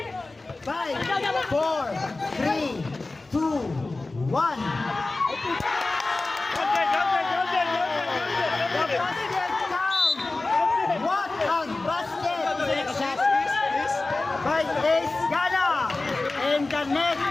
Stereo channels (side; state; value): right; quieter; 3.3 dB